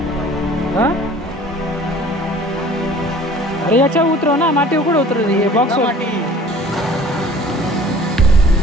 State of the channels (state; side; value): normal; both; correlation 0.49